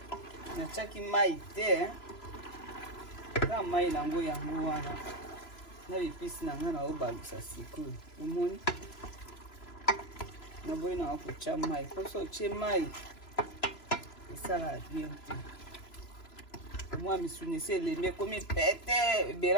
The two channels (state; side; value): late; right; 3.0 ms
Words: natiaki mai te na mai nango yango wana na bipisi na nga naobalusa sikoyo omoni naboyi na wakotia mai poso otie mai esala bien te mwa misuni esi elembi ekomi pete